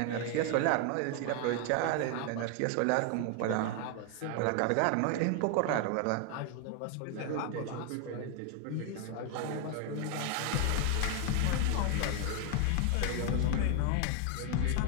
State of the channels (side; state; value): both; different; correlation 0.01